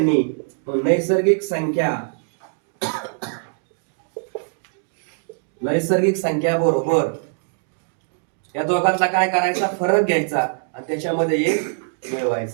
नैसर्गिक संख्या बरोबर या दोघांचा काय करायचा? फरक घ्यायचा आणि त्याच्यामध्ये एक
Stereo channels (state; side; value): silent; left; digital silence